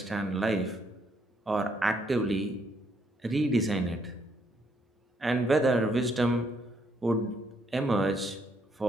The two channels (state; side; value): normal; both; correlation 0.72